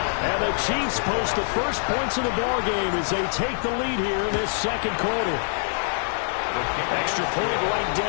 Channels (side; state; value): right; silent; 62 dB below the other